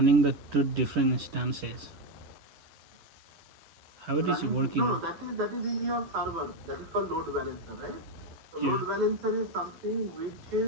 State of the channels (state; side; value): late; left; 10 ms